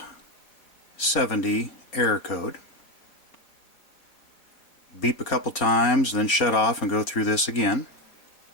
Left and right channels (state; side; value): late; right; 4.4 ms